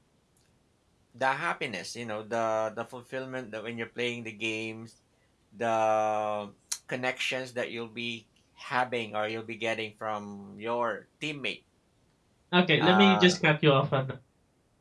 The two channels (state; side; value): identical; both; correlation 1.00